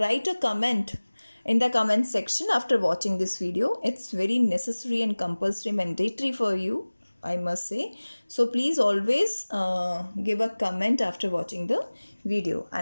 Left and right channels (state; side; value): inverted; both; correlation -1.00